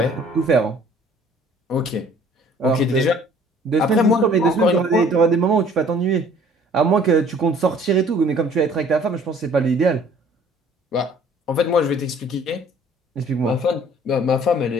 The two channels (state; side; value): normal; both; correlation 0.54